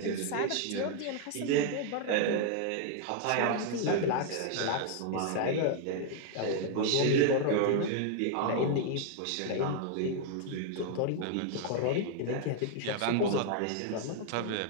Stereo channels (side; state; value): both; different; correlation 0.00